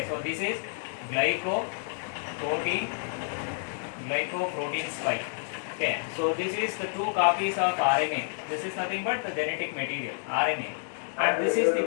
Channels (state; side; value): silent; right; 58 dB below the other